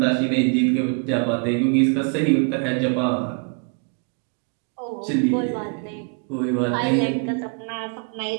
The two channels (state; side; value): quieter; left; 38.6 dB